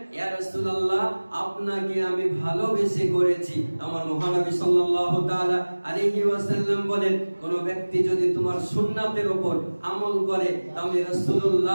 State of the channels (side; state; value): both; inverted; correlation -1.00